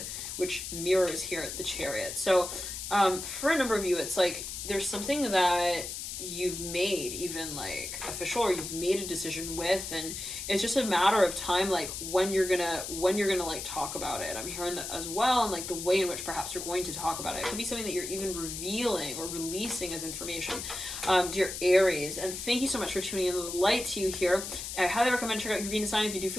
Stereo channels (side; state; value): left; noise; hiss, 7 dB below the sound